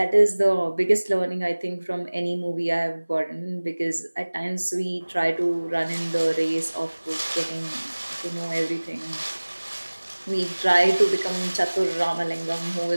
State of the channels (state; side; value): inverted; both; correlation -1.00